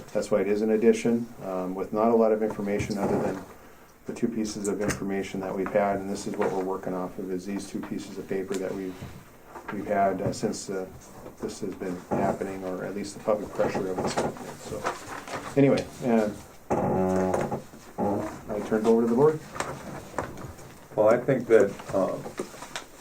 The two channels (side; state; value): both; identical; correlation 1.00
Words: That's why it is an addition, with not a lot of information other than the two pieces of information that we've had, and this is what we're working off of, is these two pieces of paper that we've had since this has been happening, or at least the public pressure of it's happening. So anyway, I turned over to the board. Well, I think that